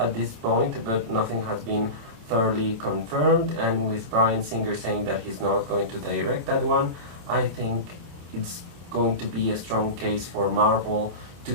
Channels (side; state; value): left; late; 27 ms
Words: this point, but nothing has been thoroughly confirmed, and with Bryan Singer saying that he's not going to direct that one, I think it's going to be a strong case for Marvel to